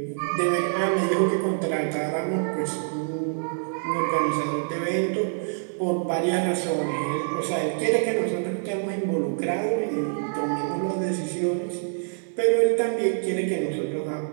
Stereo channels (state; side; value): silent; left; digital silence